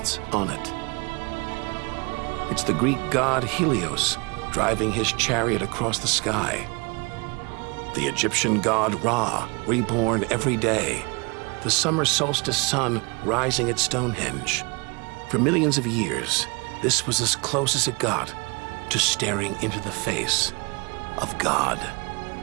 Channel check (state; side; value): quieter; left; 29.5 dB